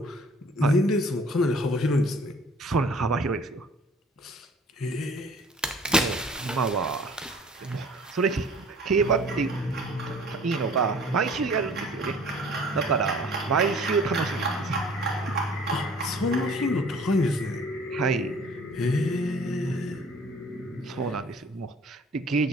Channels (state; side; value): normal; both; correlation 0.51